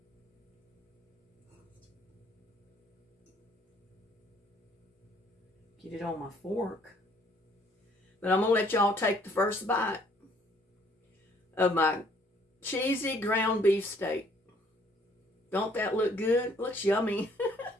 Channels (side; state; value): both; normal; correlation 0.62